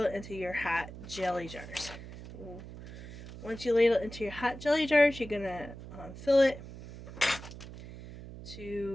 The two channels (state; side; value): noise; right; hum, 13 dB below the sound